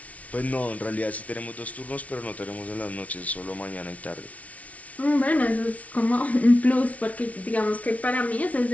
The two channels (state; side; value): late; right; 0.067 ms